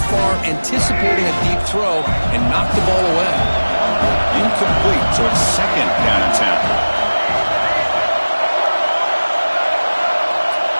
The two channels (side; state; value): both; inverted; correlation -1.00